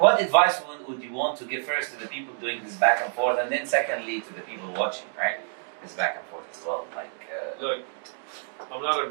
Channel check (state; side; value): silent; left; digital silence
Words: advice would you want to give first to the people doing this back and forth, and then secondly to the people watching, right? This back and forth as well. Look, I'm not a